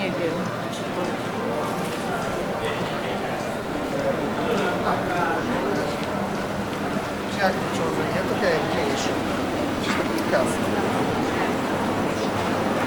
wiem. Jak ciągle, to jest mniejsze. Kasy.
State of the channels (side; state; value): both; identical; correlation 1.00